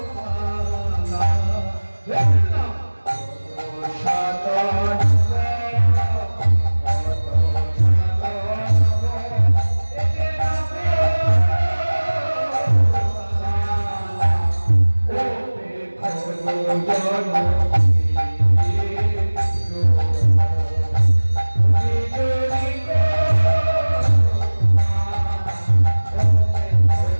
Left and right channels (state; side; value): inverted; both; correlation -1.00